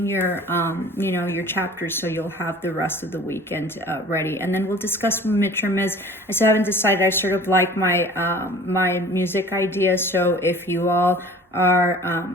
your your chapters, so you'll have the rest of the weekend ready, and then we'll discuss what midterm is. I still haven't decided. I sort of like my my music ideas, so if you all are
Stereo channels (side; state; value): both; normal; correlation 0.45